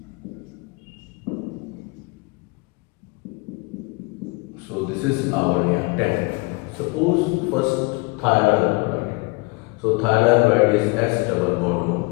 So this is our reactant. Suppose first thionyl chloride. So thionyl chloride is S double bond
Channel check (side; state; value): right; quieter; 26.8 dB